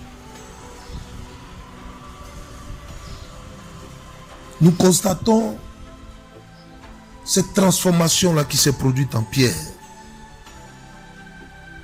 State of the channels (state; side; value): identical; both; correlation 1.00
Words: Nous constatons cette transformation-là qui s'est produite en Pierre.